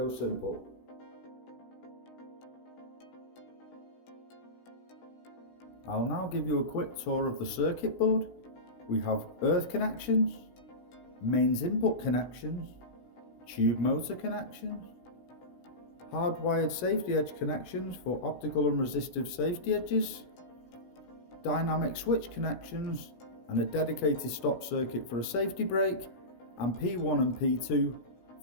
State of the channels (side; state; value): right; late; 17 ms